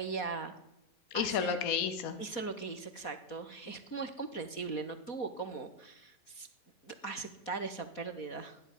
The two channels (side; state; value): right; late; 4.2 ms